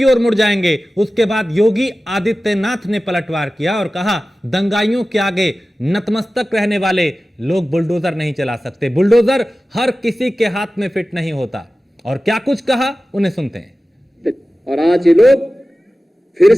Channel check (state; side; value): normal; both; correlation 0.96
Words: ओर मुड़ जाएंगे, उसके बाद योगी आदित्यनाथ ने पलटवार किया और कहा दंगाइयों के आगे नतमस्तक रहने वाले लोग बुलडोजर नहीं चला सकते। बुलडोजर हर किसी के हाथ में फिट नहीं होता। और क्या कुछ कहा उन्हें सुनते हैं। और आज ये लोग फिर